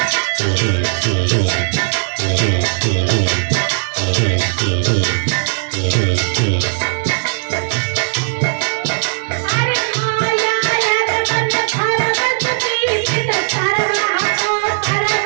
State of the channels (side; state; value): left; silent; digital silence